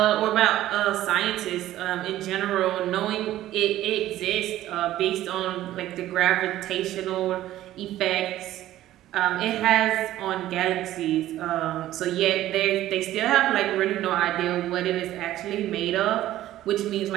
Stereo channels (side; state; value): left; quieter; 14.0 dB